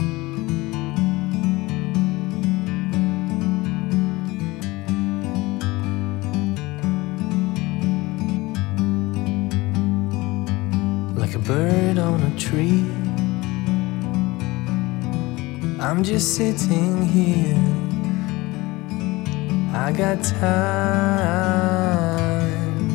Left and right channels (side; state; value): right; quieter; 21.4 dB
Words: Like a bird on a tree, I'm just sitting here. I got time,